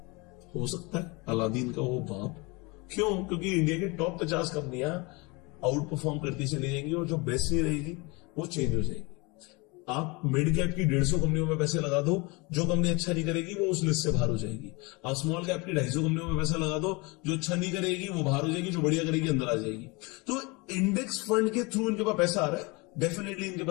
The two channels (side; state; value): right; quieter; 26.9 dB